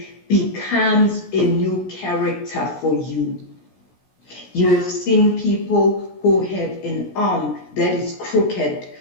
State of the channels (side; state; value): right; late; 16 ms